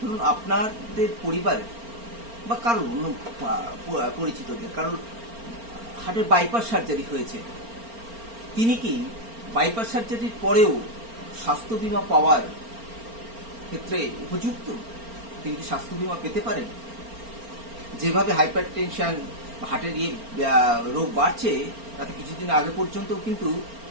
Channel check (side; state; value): left; late; 4.4 ms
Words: আপনাদের পরিবারের বা কারোর অন্য পরিচিতদের কারোর হার্টের বাইপাস সার্জারি হয়েছে, তিনি কি বাইপাস সার্জারির পরেও স্বাস্থ্য বীমা পাওয়ার ক্ষেত্রে উপযুক্ত? তিনি কি স্বাস্থ্য বীমা পেতে পারেন? যেভাবে হাইপার টেনশন হার্টের রোগ বাড়ছে, তাতে কিছুদিন আগে পর্যন্ত কিন্তু